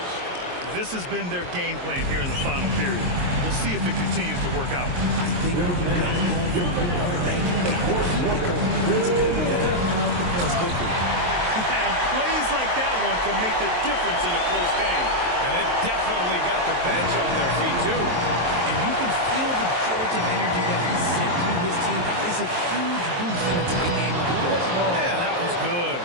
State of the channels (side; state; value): left; late; 23 ms